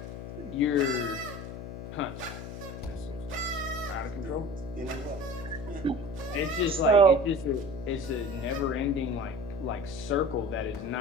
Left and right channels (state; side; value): noise; left; hum, 9 dB below the sound